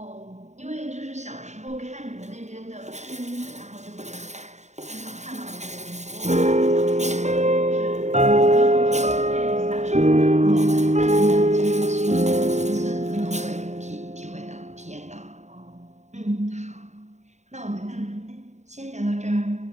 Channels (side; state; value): left; late; 0.34 ms